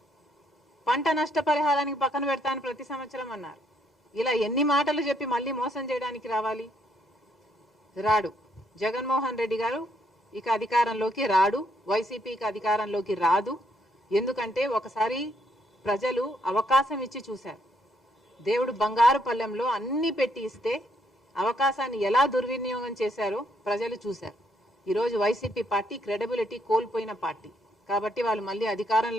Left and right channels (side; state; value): both; normal; correlation 0.72